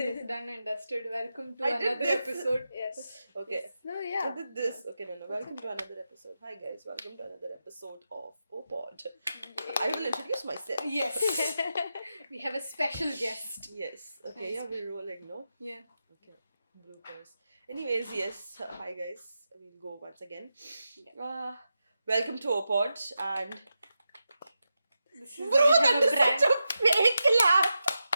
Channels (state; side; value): inverted; both; correlation -0.89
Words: done and dusted. Welcome to I did another this. episode. Yes. Okay. No, I yeah. did this. Okay, no. Welcome to another episode. Hi guys, welcome to another episode of Opod. I will introduce myself. Yes. We have a special guest. Yes. Okay, yeah, we're rolling, no? Yeah. Okay. Bloopers. Anyways, yes. Hi guys. We'll go once again. Welcome to Opod and This is bro, we have that a is brand. such a fake laugh.